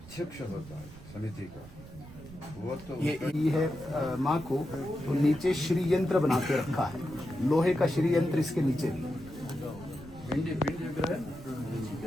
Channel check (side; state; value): right; noise; rumble, 17 dB below the sound